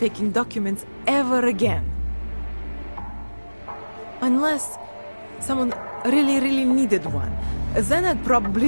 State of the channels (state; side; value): inverted; both; correlation -1.00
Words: documents ever again. Unless someone really needed one. Then I'd